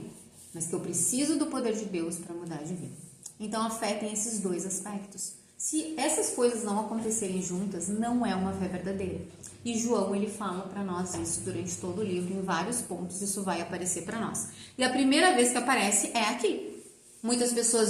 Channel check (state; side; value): identical; both; correlation 1.00